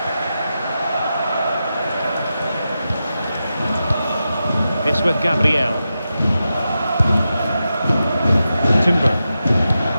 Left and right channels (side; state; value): both; inverted; correlation -0.90